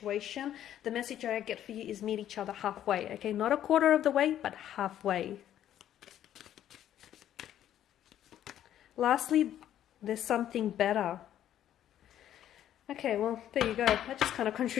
The message I get for you is meet each other halfway, okay? Not a quarter of the way, but halfway. Lastly, there's something better. Okay, well, there you go. That just kind of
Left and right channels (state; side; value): quieter; right; 11.3 dB